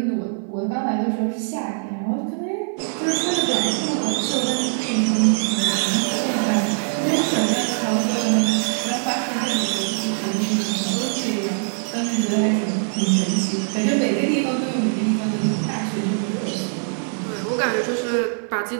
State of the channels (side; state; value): left; silent; 58 dB below the other